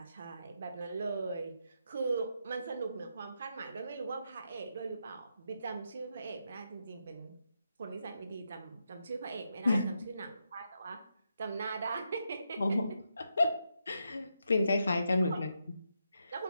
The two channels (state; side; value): inverted; both; correlation -0.82